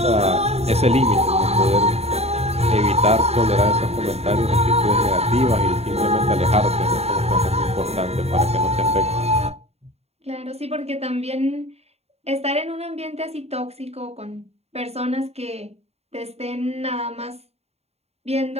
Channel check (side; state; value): left; late; 0.30 ms